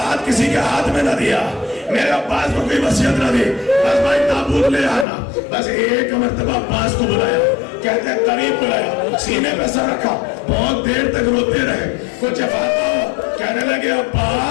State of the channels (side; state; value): right; drops out; at 5.1 s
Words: ہاتھ کسی کے ہاتھ میں نہ دیا, میرے عباس کو کوئی وصیت نہ دی. بس بھائی تابوت لے آنا. بس ایک مرتبہ عباس کو بلایا, کہتے ہیں قریب بلایا, سینے پہ سر رکھا, بہت دیر تک روتے رہے. کچھ افاقہ ہوا, کہنے لگے